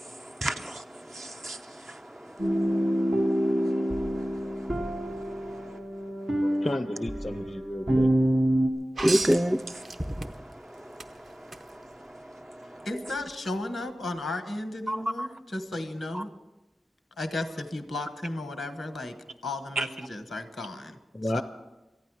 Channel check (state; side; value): normal; both; correlation 0.95